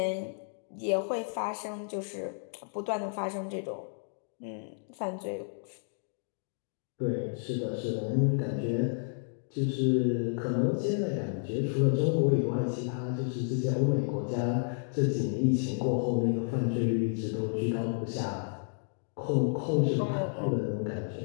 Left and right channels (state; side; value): silent; right; digital silence